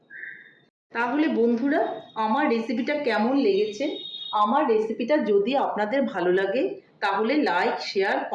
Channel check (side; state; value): both; identical; correlation 1.00